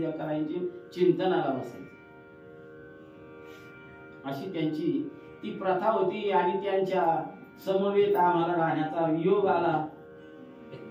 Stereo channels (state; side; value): identical; both; correlation 1.00